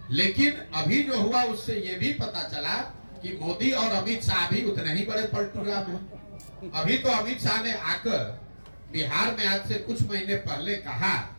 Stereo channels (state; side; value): inverted; both; correlation -1.00